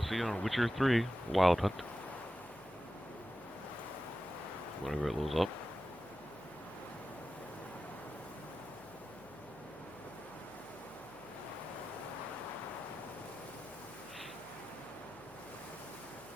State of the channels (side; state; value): left; noise; hum, 26 dB below the sound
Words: on Witcher 3 Wild Hunt. Whenever it loads up.